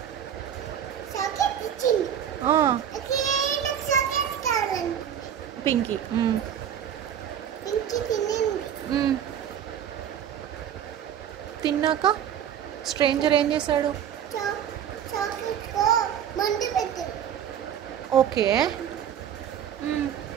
చాక్లెట్ ఇచ్చింది. నాకు చాక్లెట్ కావాలండి. పింకీ పింకీ తినింది. తిన్నాక స్ట్రేంజర్ ఏం చేశాడు? చాక్లెట్ కో మందు పెట్టాడు. ఓకే.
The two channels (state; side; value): quieter; left; 9.3 dB